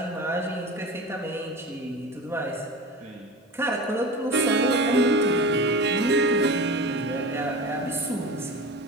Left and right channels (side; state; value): both; normal; correlation 0.31